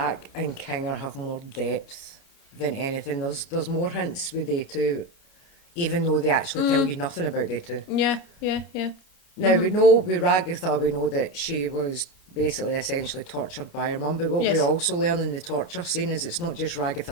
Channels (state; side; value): late; right; 29 ms